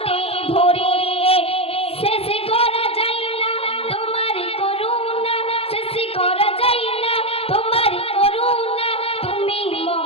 ভরে শেষ করা যায় না তোমার করুণা শেষ করা যায় না তোমার করুণা তুমি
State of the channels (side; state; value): right; late; 0.28 ms